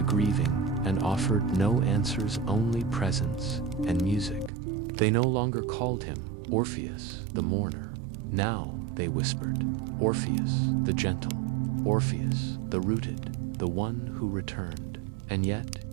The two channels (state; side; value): drops out; left; at 4.5 s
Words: grieving and offered no answers, only presence and music. They no longer called him Orpheus, the mourner. Now they whispered, Orpheus, the gentle, Orpheus, the rooted, the one who returned. And yet,